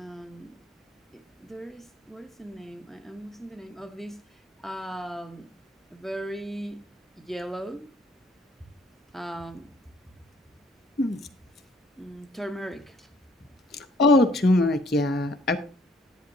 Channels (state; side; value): normal; both; correlation 0.62